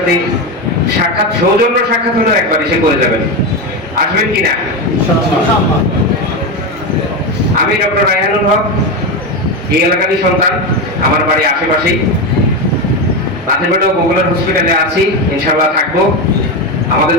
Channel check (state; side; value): normal; both; correlation 0.14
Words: সাক্ষাৎ, সৌজন্য সাক্ষাৎ হলেও একবার এসে করে যাবেন। আসবেন কিনা? আমি ডক্টর রায়হানুল হক, এই এলাকারই সন্তান, আমার বাড়ি আশেপাশেই। নাথেরপেটুয়া পপুলার হসপিটালে আছি, ইনশাআল্লাহ থাকবো। আমাদের